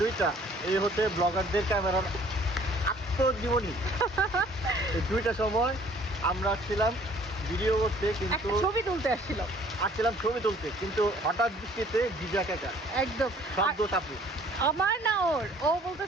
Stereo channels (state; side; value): normal; both; correlation 0.56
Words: 2টা, এই হতে ব্লগারদের ক্যামেরার আত্মজীবনী। এই 2টার সময় আমরা ছিলাম ভিডিও করতে, কিন্তু ছবি তুলতে আসছিলাম, কিন্তু হঠাৎ বৃষ্টিতে ভিজা কাকা একদম শব্দ চাপু। আমার না ওর, ও